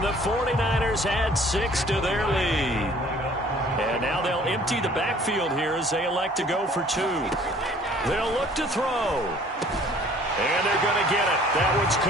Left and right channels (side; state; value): both; normal; correlation 0.54